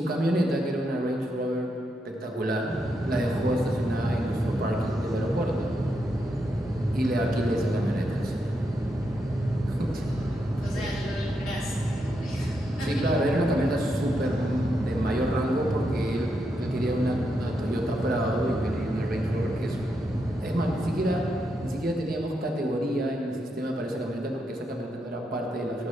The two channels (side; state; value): both; normal; correlation 0.82